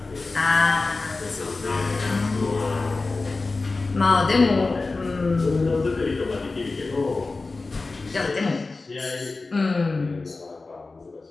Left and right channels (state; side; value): quieter; right; 3.6 dB